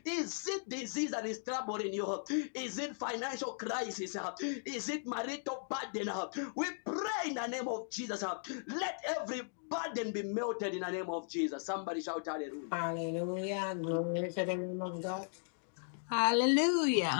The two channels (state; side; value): silent; right; digital silence